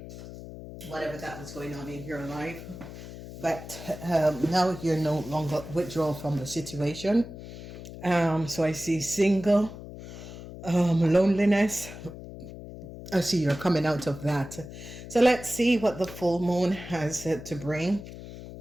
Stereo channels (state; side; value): noise; left; hum, 13 dB below the sound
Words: whatever that was going on in your life. But now you're no longer withdraw from the situation. So I see single, loneliness. I see you're coming out of that. So let's see what the full moon has to bring.